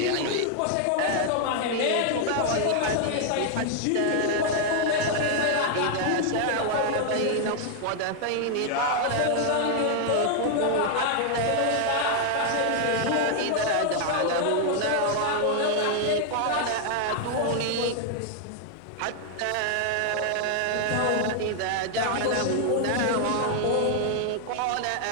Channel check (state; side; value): different; both; correlation 0.00